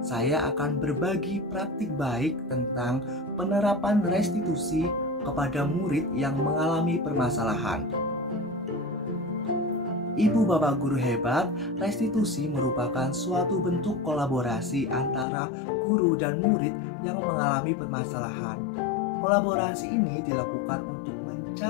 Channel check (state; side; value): drops out; right; at 15.2 s